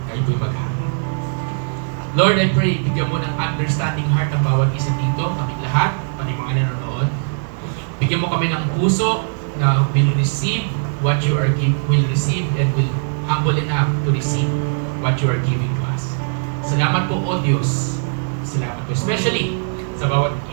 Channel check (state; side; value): silent; left; digital silence